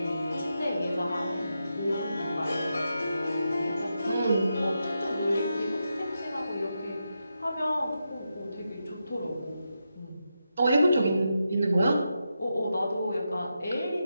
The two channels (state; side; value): inverted; both; correlation -0.87